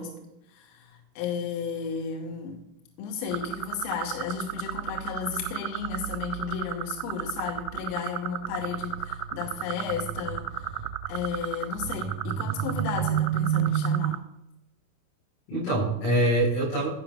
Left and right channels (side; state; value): right; late; 28 ms